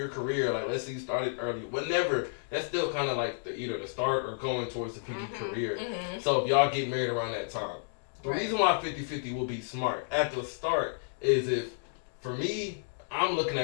career, like, let's say you started early, whenever, that's still kind of like either the start or going towards the peak of your career. So if y'all get married around that time, the reason why 50-50 will be smart at the start is if, for me, I'm looking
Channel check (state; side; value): silent; right; digital silence